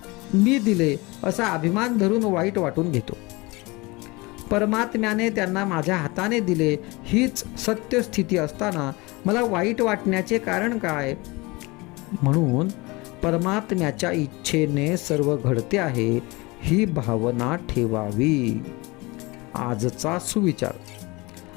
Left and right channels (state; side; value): quieter; right; 24.3 dB